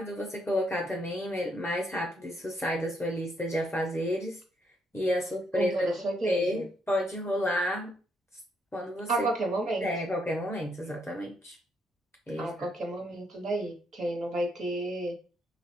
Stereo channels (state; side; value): normal; both; correlation 0.74